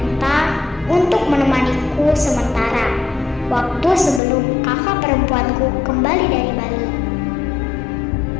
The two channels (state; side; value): drops out; right; at 4.2 s